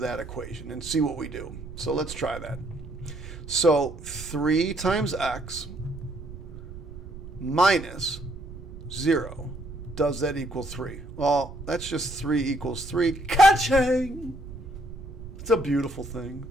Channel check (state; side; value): noise; right; rumble, 13 dB below the sound